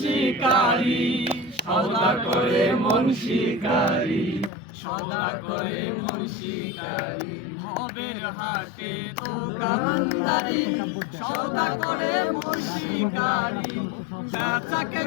সদা করে মন শিকারি সদা করে মন শিকারি ভবের হাটে দোকানদারি সদা করে মন শিকারি বেচা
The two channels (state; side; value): drops out; right; at 4.5 s